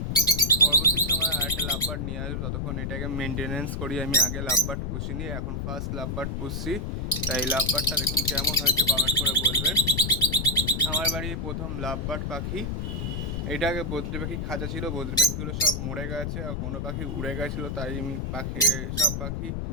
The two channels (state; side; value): noise; left; rumble, 3 dB below the sound